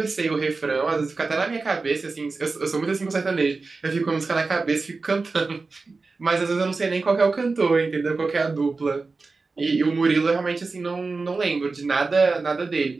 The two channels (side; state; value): left; quieter; 4.0 dB